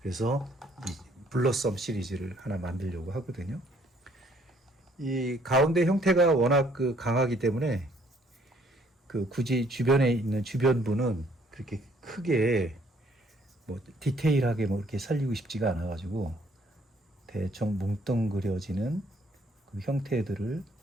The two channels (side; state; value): both; normal; correlation 0.63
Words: 그래서 이 블러썸 시리즈를 하나 만들려고 하거든요. 이 가운데 형태가 워낙 그 강하기 때문에 그 굳이 주변에 있는 주변부는 그렇게 크게 뭐 디테일하게 뭐 이렇게 살리고 싶지가 않아 가지고 대충 뭉뚱그려지는 그 형태들을